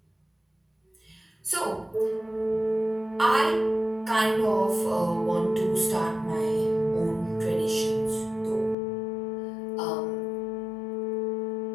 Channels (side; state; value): right; drops out; at 8.8 s